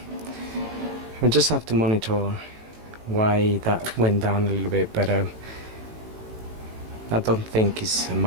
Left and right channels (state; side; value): late; left; 18 ms